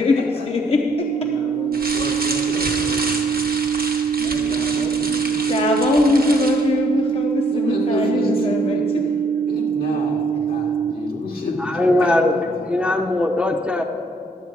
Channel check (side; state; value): both; normal; correlation 0.66